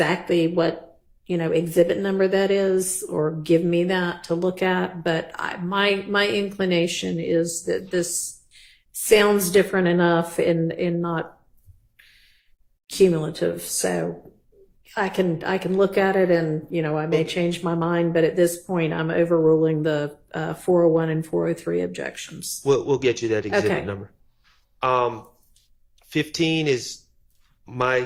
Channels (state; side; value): identical; both; correlation 1.00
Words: what, exhibit number that is, or give me that to look at, but my inclination is that this sounds different enough and not cumulative. So I can look at it and, I may change my mind, but at this point I'm overruling the 401 and 403 objections. We'll get you that exhibit Okay. number. 15 is my